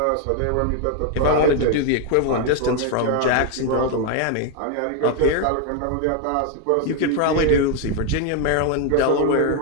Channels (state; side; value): different; both; correlation 0.01